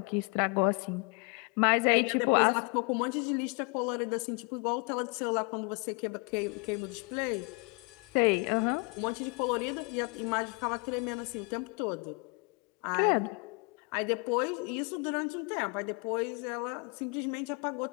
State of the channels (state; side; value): quieter; right; 32.0 dB